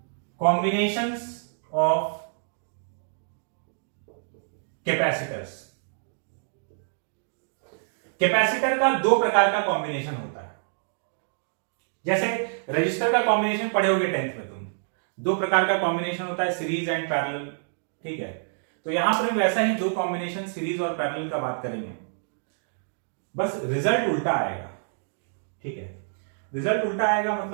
कॉम्बिनेशंस ऑफ कैपेसिटर्स। कैपेसिटर का 2 प्रकार का कॉम्बिनेशन होता है। जैसे रजिस्टर का कॉम्बिनेशन पढ़े होगे 10th में तुम, 2 प्रकार का कॉम्बिनेशन होता है, सीरीज एंड पैरेलल। ठीक है, तो यहां पर वैसा ही 2 कॉम्बिनेशन सीरीज और पैरेलल का बात करेंगे, बस रिजल्ट उल्टा आएगा। ठीक है, रिजल्ट उल्टा आएगा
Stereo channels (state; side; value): silent; left; digital silence